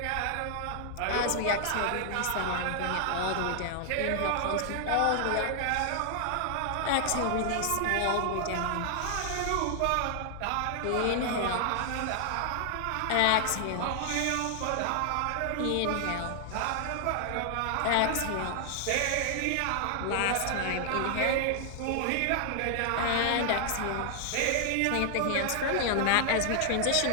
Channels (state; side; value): different; both; correlation 0.00